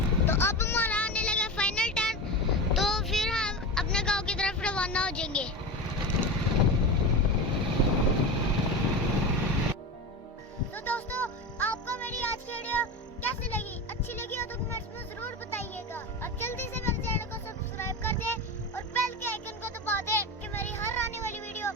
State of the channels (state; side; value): normal; both; correlation 0.24